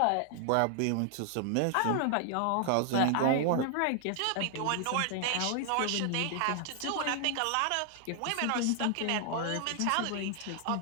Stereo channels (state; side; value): different; both; correlation 0.00